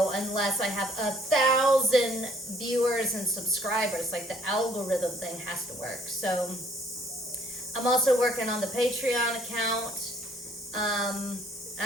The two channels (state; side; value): normal; both; correlation 0.60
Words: unless I have 1,000 viewers and subscribers. Like the algorithm thing has to work. So I'm also working on the Patreon account.